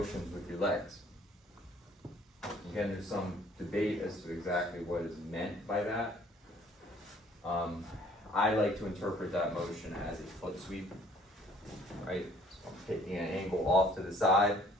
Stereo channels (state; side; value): normal; both; correlation 0.58